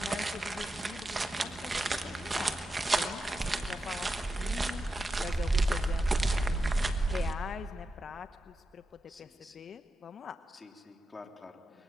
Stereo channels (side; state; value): both; normal; correlation 0.89